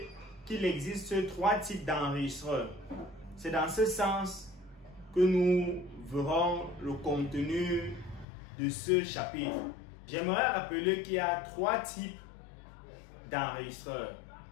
qu'il existe 3 types d'enregistreurs. C'est dans ce sens que nous verrons le contenu de ce chapitre. J'aimerais rappeler qu'il y a 3 types d'enregistreurs.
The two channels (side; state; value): right; drops out; at 8.2 s